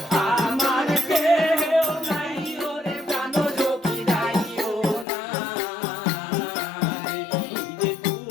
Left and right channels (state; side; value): drops out; right; at 5.1 s